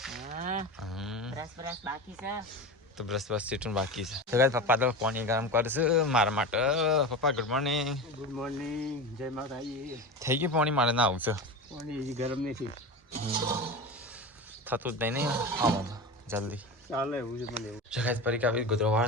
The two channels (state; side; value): normal; both; correlation 0.26